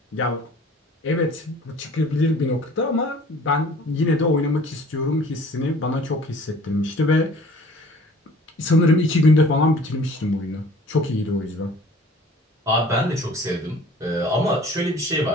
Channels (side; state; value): both; normal; correlation 0.49